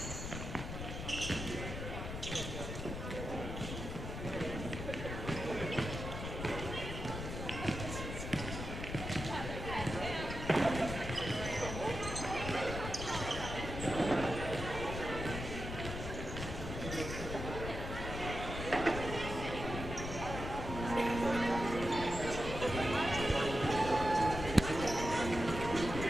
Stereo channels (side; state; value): left; noise; rumble, 6 dB below the sound